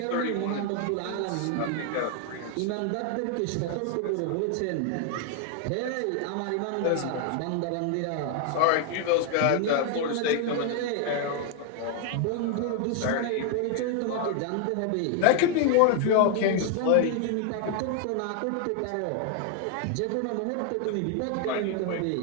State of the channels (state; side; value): different; both; correlation 0.00